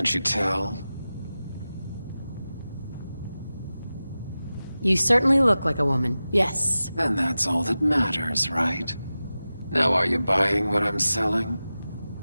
you tell? You certainly look like a woman, yes. Then that's all that matters, right? Now are you buying what I'm selling?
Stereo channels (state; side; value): inverted; both; correlation -0.95